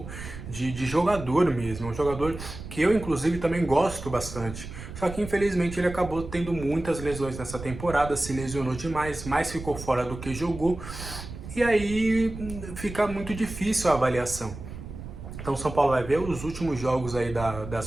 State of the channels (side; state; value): right; noise; rumble, 11 dB below the sound